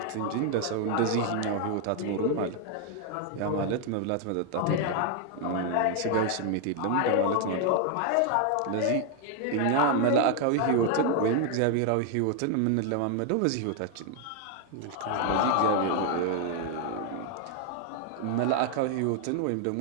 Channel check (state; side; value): different; both; correlation 0.00